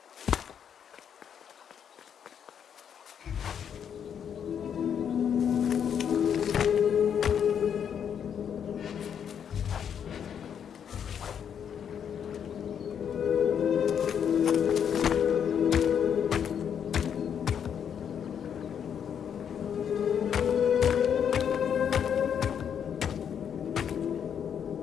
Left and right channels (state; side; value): quieter; right; 8.2 dB